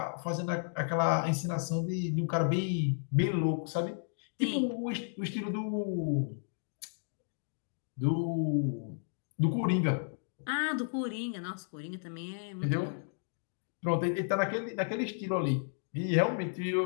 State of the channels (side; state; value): right; silent; digital silence